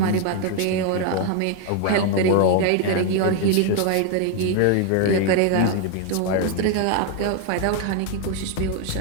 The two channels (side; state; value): both; different; correlation 0.01